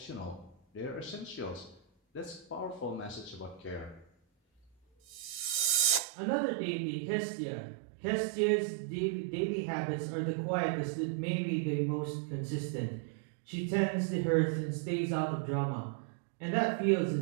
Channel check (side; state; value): left; drops out; at 6.0 s